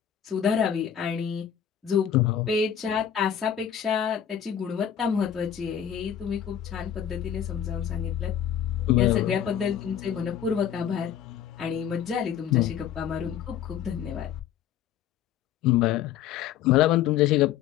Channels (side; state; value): right; quieter; 9.3 dB